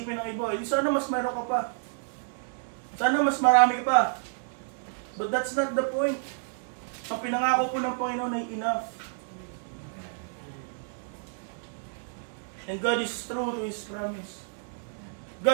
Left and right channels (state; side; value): silent; left; digital silence